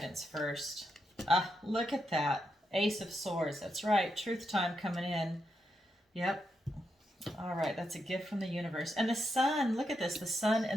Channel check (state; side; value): normal; both; correlation 0.83